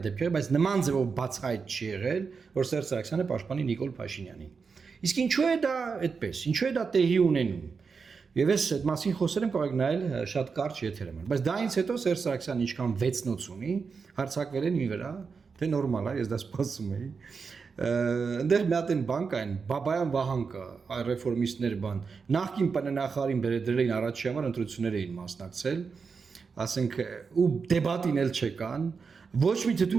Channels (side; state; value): left; quieter; 5.3 dB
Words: բայց նման ձևով բացահայտ չի եղել, որ Սերժ Սարգսյանը պաշտպանի Նիկոլ Փաշինյանին։ Իսկ ինչու է դա այդպես, ինչու է դա տեղի ունենում։ Եվ ես այդ մասին խոսել եմ, կարող եք նայել շատ կարճ եթերում, բայց դայից հետո Սերժ Սարգսյանը ինչքան վեցնոց ունի, հարձակվել են մի վրա, թե նորմալ է, ես դա սպասում էի։ Այնտեղ մի հատ են բան կային, Բաբայան Վահան կա, ռեֆորմիստներ բան, նախկին ՊՆ-նախարարին բերել էին առաջի համար ընտրություններ էին մասնակցել, ասենք ու դեբատին էլ չկան, ոչ մի